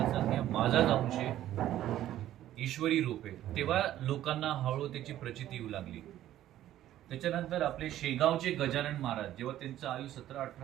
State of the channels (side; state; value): left; quieter; 12.9 dB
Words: सांग की माझाच अंश आहे, ईश्वरी रूप आहे. तेव्हा लोकांना हळूहळू त्याची प्रचिती येऊ लागली. त्याच्यानंतर आपले शेगावचे गजानन महाराज, जेव्हा त्यांचं आयु